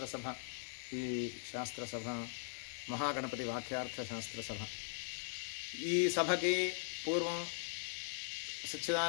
ఈ శాస్త్రసభ మహాగణపతి వాక్యార్థ శాస్త్రసభ. ఈ సభకి పూర్వం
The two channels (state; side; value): silent; right; digital silence